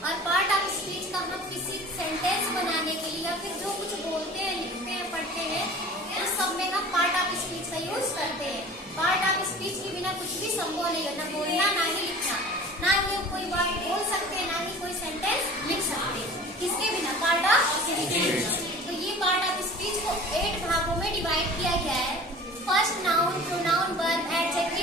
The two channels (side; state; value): both; normal; correlation 0.42